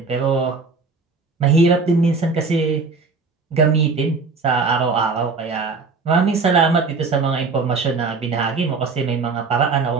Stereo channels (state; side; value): quieter; left; 4.4 dB